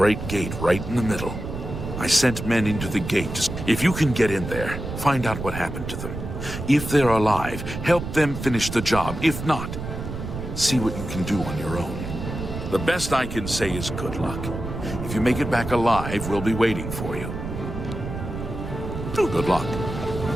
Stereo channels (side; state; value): right; noise; rumble, 7 dB below the sound